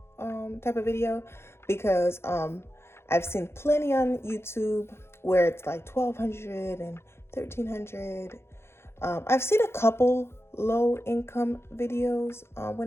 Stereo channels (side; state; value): right; late; 0.12 ms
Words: type of video, because I've seen plenty on YouTube where it's like 1,200 and 1,300. I've seen a couple low income videos